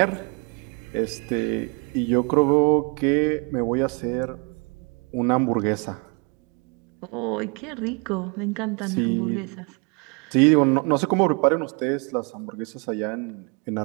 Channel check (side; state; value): left; quieter; 33.0 dB